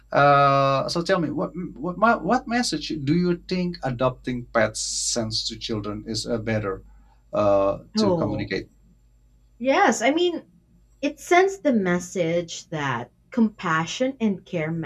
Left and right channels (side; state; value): both; identical; correlation 1.00